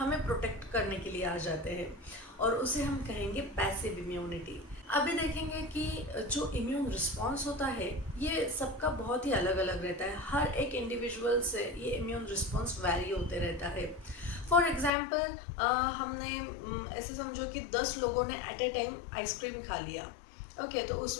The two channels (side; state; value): right; drops out; at 14.9 s